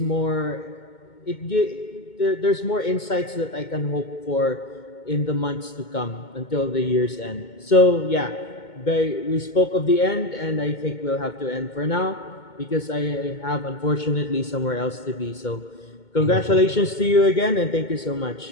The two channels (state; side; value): late; right; 2.2 ms